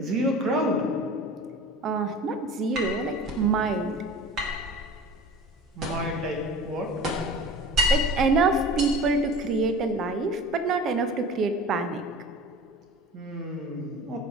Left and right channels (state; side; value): normal; both; correlation 0.39